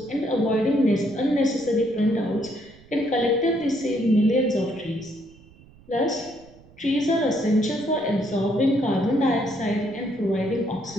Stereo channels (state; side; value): noise; right; rumble, 25 dB below the sound